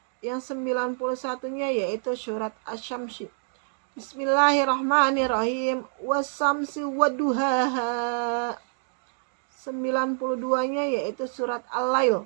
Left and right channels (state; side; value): silent; left; digital silence